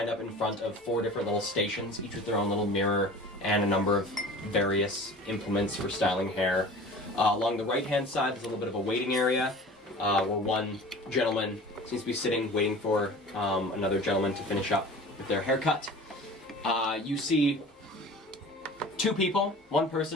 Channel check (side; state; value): both; normal; correlation 0.41